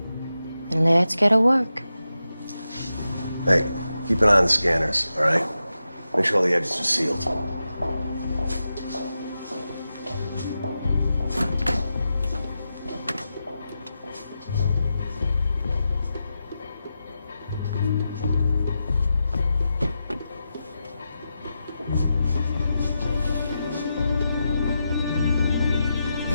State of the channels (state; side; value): inverted; both; correlation -0.89